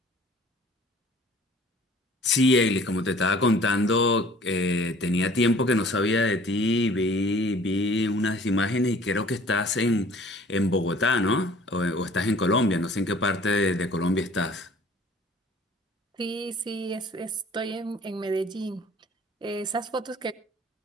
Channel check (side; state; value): both; normal; correlation 0.51